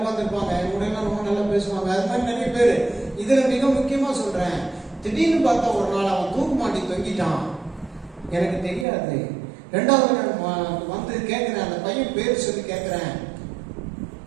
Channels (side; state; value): left; drops out; at 8.8 s